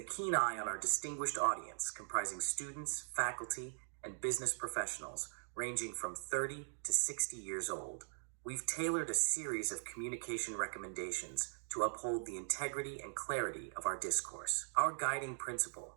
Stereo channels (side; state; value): left; silent; digital silence